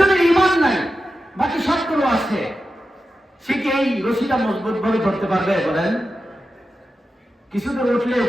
ঈমান নাই, বাকি সবগুলো আছে, সে কি এই রশিটা মজবুত ভাবে ধরতে পারবে? বলেন। কিছু দূর উঠলে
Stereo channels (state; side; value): normal; both; correlation 0.91